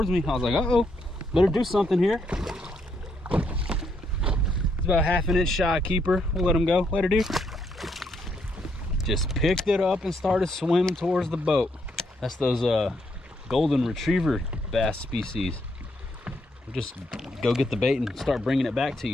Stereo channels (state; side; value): normal; both; correlation 0.75